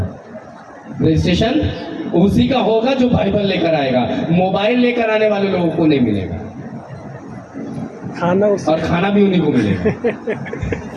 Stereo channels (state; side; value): identical; both; correlation 1.00